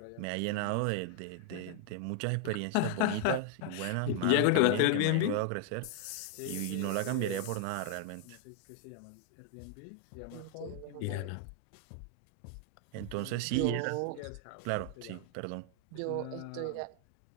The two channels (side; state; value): both; different; correlation 0.00